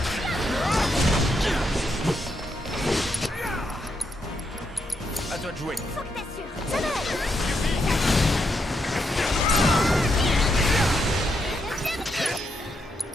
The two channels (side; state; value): both; normal; correlation 0.80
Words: À toi de jouer. Faut que t'assures. Ça va aller.